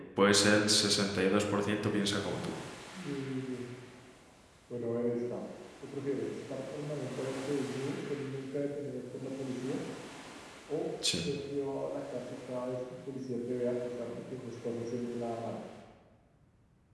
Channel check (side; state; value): both; identical; correlation 1.00